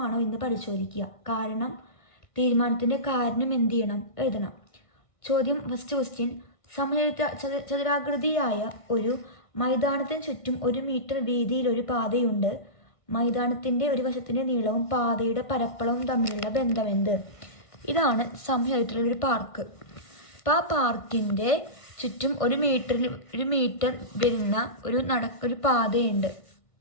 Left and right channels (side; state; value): right; late; 1.6 ms